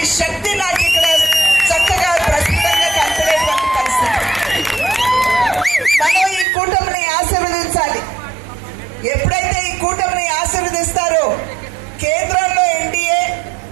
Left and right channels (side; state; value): left; drops out; at 6.5 s